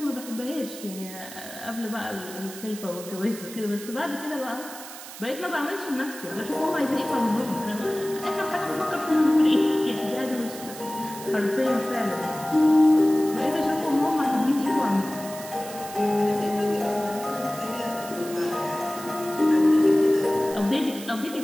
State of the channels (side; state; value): right; noise; hiss, 14 dB below the sound